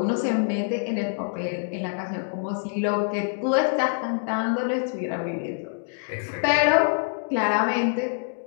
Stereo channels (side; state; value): right; silent; digital silence